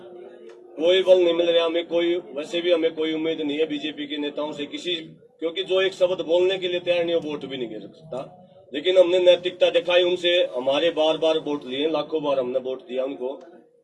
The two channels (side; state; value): both; identical; correlation 1.00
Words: कोई बल नहीं मिल रहा हमें, कोई वैसे भी हमें कोई उम्मीद नहीं है बीजेपी के नेताओं से किसी, क्योंकि जो एक शब्द बोलने के लिए तैयार नहीं, वो वोट भी नहीं गिर सकता। लेकिन हमने नैतिकता दिखाई, उनसे हमारे बार बार वोट लिए, लाखों बार हमने वोट दिया उनको,